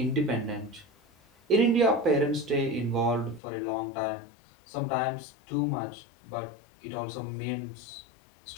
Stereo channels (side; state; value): right; drops out; at 3.4 s